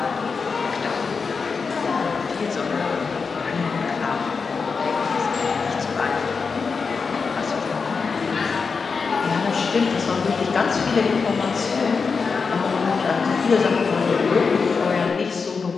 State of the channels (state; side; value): quieter; right; 5.1 dB